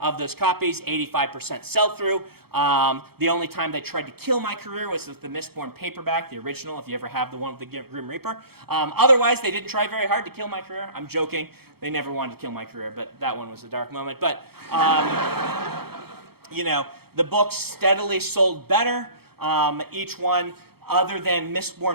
those copies, 85% sell-through. The only time they tried to kill my career was with the Mistborn paperback, the original, if you ever have the one with the Grim Reaper. Otherwise, they didn't try very hard to kill my career. I'm joking. They never wanted to kill my career, but that one was a dark moment. But, the books steadily sold better. Each one, other than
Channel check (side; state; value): left; late; 0.96 ms